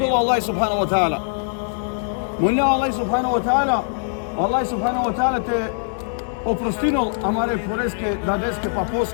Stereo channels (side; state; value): right; silent; digital silence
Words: Allah subhanahu wa ta'ala. Molim Allah subhanahu wa ta'ala, Allah subhanahu wa ta'ala te oprostinol amare poreske, dadeske,